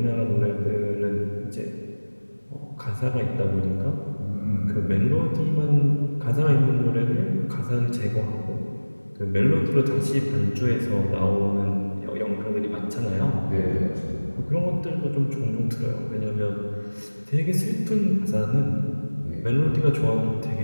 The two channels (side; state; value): both; inverted; correlation -1.00